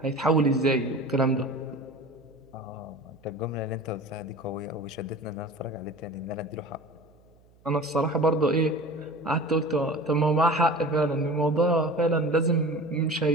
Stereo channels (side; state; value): right; noise; hum, 30 dB below the sound